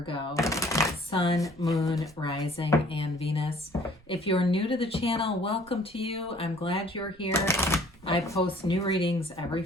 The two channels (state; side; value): noise; right; rumble, 26 dB below the sound